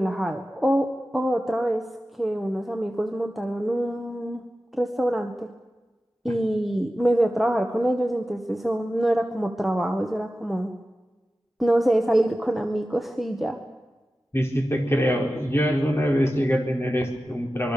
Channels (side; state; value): both; normal; correlation 0.94